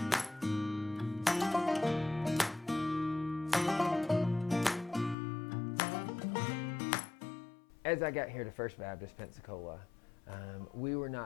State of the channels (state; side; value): drops out; right; at 5.2 s